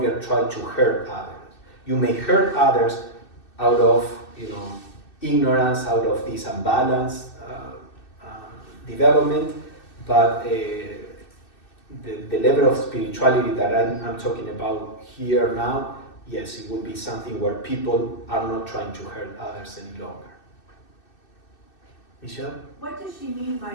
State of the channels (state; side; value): late; right; 2.6 ms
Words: try to hurt others. You may hurt others out of, ignorance, out of this unbalanced development, but the level of spirituality that I'm talking about here now, yes, it would be something where people are not trying to hurt others any longer. Michelle? What does she mean by